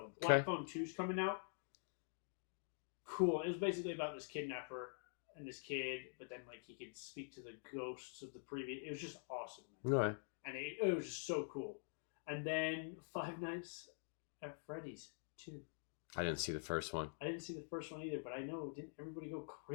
Black Phone 2's coming out. Cool. It was basically about this kidnapper and this kid, but then like he could speak to the ghosts of the previous. It was just awesome, man. Right. And it was just so cool. And then Five Nights at Freddy's 2. I didn't see the first one. I didn't see the first one either, but I know, didn't everybody go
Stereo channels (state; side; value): silent; right; digital silence